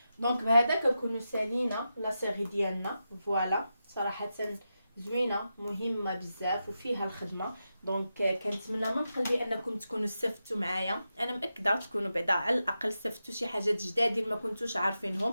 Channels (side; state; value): both; inverted; correlation -0.89